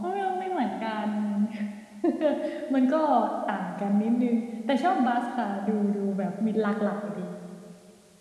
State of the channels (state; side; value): identical; both; correlation 1.00